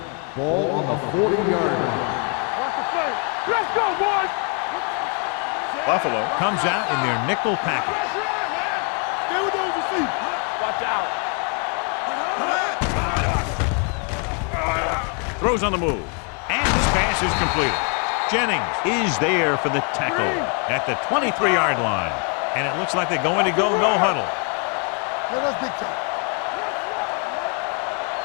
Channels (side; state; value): right; quieter; 37.7 dB